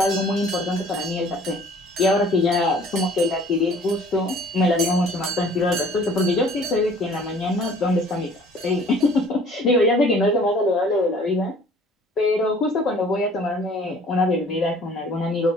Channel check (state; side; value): normal; both; correlation 0.52